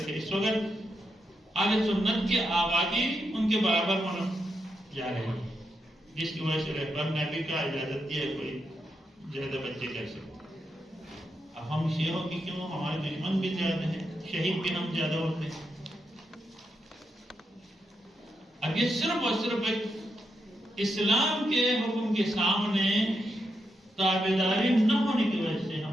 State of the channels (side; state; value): both; normal; correlation 0.83